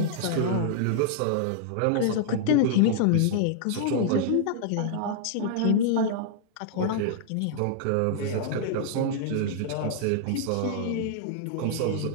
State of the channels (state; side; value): different; both; correlation -0.01